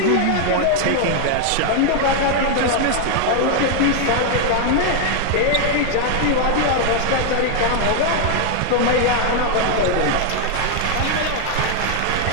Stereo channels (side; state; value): both; different; correlation 0.00